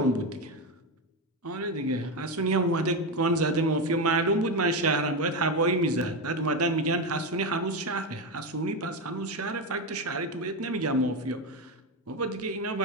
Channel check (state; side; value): normal; both; correlation 0.13